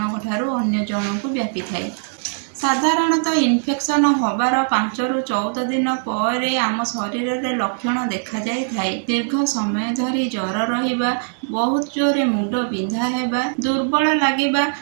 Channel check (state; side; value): silent; left; digital silence